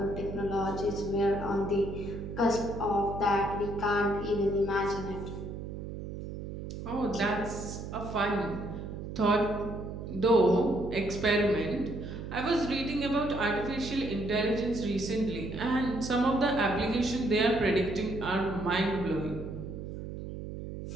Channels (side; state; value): right; noise; hum, 8 dB below the sound